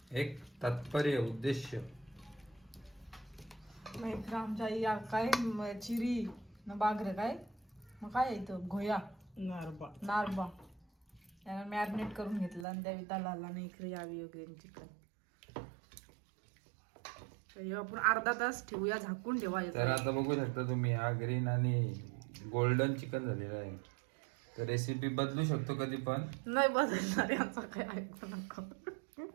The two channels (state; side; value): drops out; left; at 12.7 s